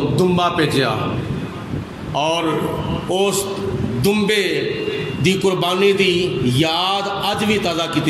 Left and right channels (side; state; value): both; identical; correlation 1.00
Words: دمبا بھیجیا، اور اس دمبے دی قربانی دی یاد اج بھی تازہ